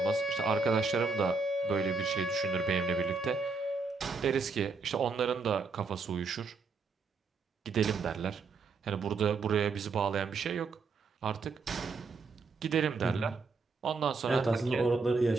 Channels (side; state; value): left; quieter; 4.5 dB